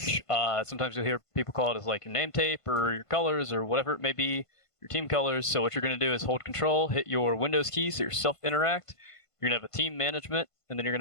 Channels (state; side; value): late; right; 1.5 ms